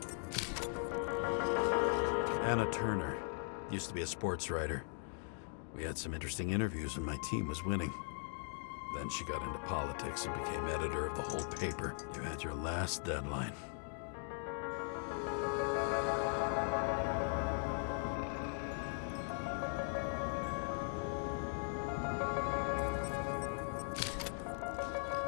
Turner. Used to be a sports writer. We had some interesting interviews when my team was winning. Then she got into politics and became editor of the whole paper. You had your last deadline.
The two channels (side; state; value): right; silent; 51 dB below the other